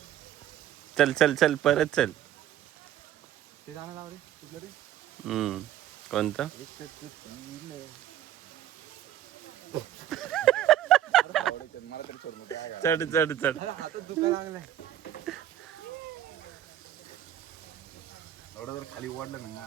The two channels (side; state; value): left; quieter; 11.6 dB